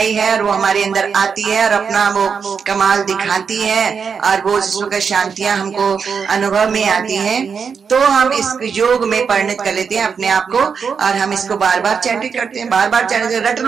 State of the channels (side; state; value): left; quieter; 6.2 dB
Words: है और वो हमारे अंदर आती है और अपना वो कमाल दिखाती है और वो जिस शांतियां हमको अनुभव में आती हैं, तो हम इस योग में परिणत कर लेते हैं अपने आप को और हम इसको बार बार चैंटिंग करते हैं, बार बार चैंटिंग, रट